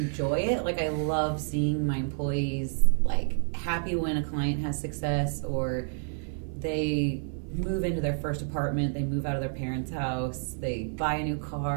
it. Like, I love seeing my employees, like, happy when a client has success, or they move into their first apartment, they move out of their parents' house, they buy a new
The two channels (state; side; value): silent; left; digital silence